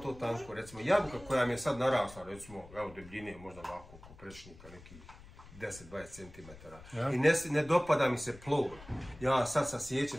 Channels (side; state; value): left; noise; rumble, 19 dB below the sound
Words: tanko, recimo jabuka koja mi je sad narasla, recimo, evo debljine, možda ovako, oko prečnika, nekih 10-20 cm. I ne dopada mi se plod. Ja sad sasjećem